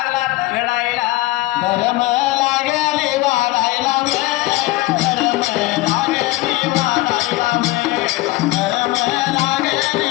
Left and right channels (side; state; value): right; quieter; 18.8 dB